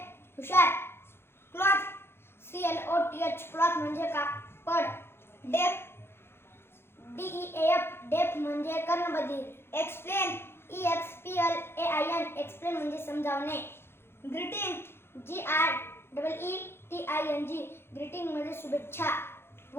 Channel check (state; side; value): late; right; 0.11 ms